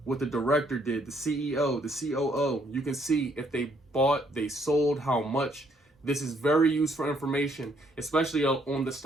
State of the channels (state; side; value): normal; both; correlation 0.69